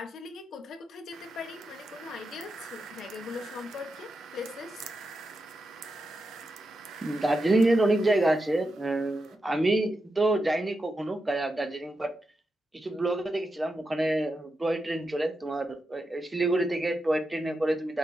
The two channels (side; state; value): both; normal; correlation 0.88